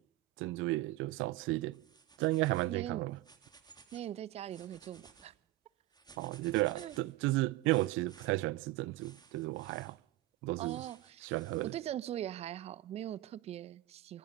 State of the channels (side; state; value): left; quieter; 17.2 dB